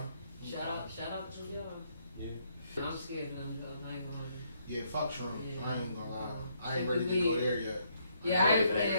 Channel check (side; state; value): both; inverted; correlation -0.72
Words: shout out to y'all. Yeah. I'm scared of them though. I ain't gonna. Yeah, fuck shrooms. Yeah. I ain't gonna lie. I ain't ready to go there yet. Yeah,